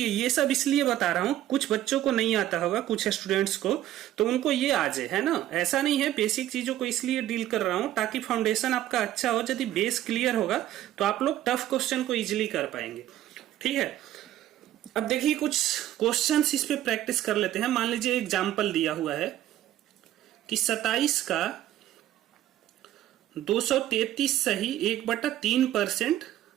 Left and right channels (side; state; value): left; quieter; 12.9 dB